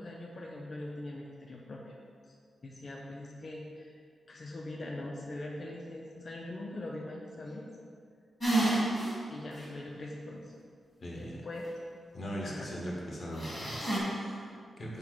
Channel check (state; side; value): normal; both; correlation 0.86